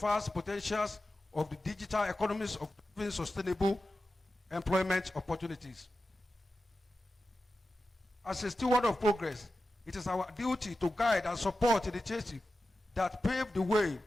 potentials of the digital economies of sustainable employment opportunities. As a steward of progress, it is our duty to guide and support initiatives that pave the way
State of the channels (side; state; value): both; normal; correlation 0.93